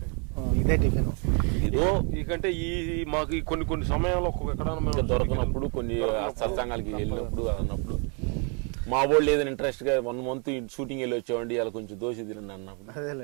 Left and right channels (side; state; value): left; quieter; 36.3 dB